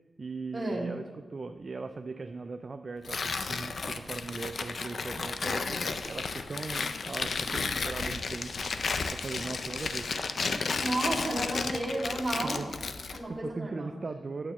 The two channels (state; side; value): normal; both; correlation 0.89